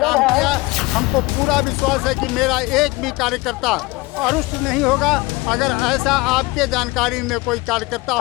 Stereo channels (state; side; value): quieter; right; 22.6 dB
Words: किया। हमको पूरा विश्वास है कि मेरा एक भी कार्यकर्ता अरुष्ट नहीं होगा। अगर ऐसा आपके जानकारी में कोई कार्यकर्ता